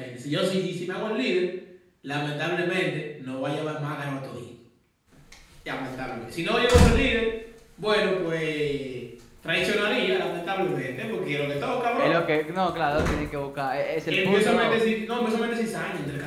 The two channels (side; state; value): both; identical; correlation 1.00